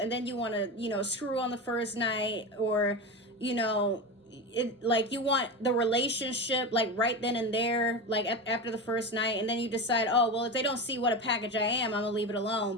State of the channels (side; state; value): both; normal; correlation 0.21